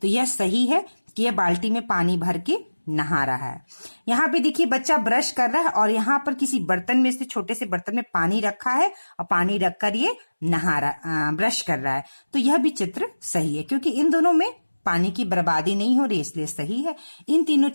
तो यह सही है कि यह बाल्टी में पानी भर के नहा रहा है। यहाँ पे देखिए बच्चा ब्रश कर रहा है और यहाँ पर किसी बर्तन में से, छोटे से बर्तन में पानी रखा है और पानी रखकर ये ब्रश कर रहा है, तो यह भी चित्र सही है, क्योंकि इन दोनों में पानी की बर्बादी नहीं हो रही, इसलिए सही है। इन तीनों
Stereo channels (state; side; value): inverted; both; correlation -1.00